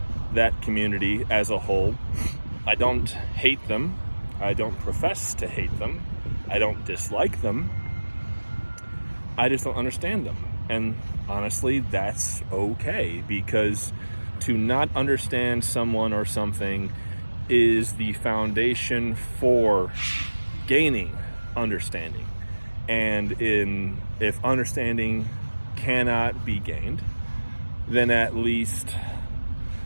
that community as a whole, I don't hate them. I don't profess to hate them. I don't dislike them. I just don't understand them. And honestly, that's okay, because to not understand someone or something is the foundation for gaining understanding. And if understanding cannot be gained, then at least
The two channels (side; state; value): both; inverted; correlation -1.00